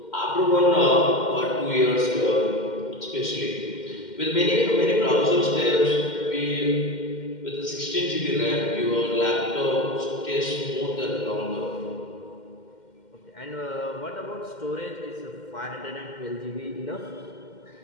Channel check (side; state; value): right; late; 2.1 ms